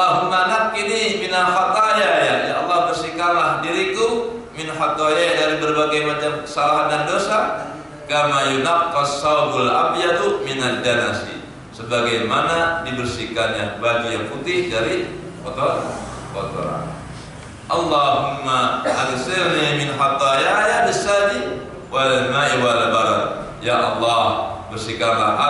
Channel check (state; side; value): identical; both; correlation 1.00